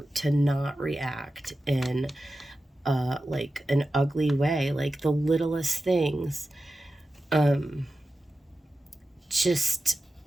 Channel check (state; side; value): normal; both; correlation 0.93